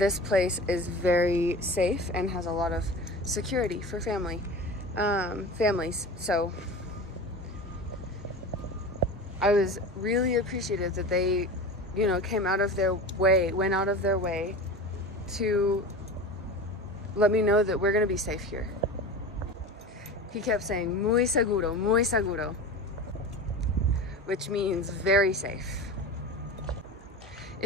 place is very safe and has a lot of security for families. So I was really appreciative that they, you know, went out of their way to let me know that we're gonna be safe here. He kept saying, muy seguro, which means very safe.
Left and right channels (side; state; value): both; normal; correlation 0.32